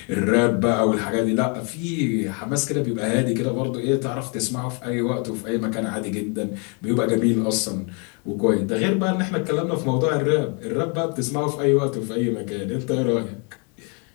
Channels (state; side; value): quieter; right; 35.9 dB